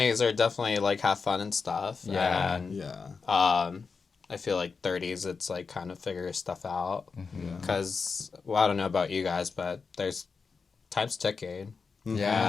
are definitely, like, have fun and stuff. Yeah. And, I feel like 30s, it's like kind of figure stuff out. Because, I don't know about you guys, but there's time's ticking.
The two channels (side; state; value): right; quieter; 5.0 dB